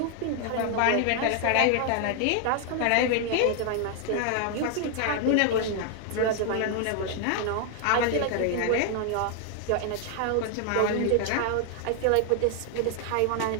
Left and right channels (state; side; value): different; both; correlation 0.00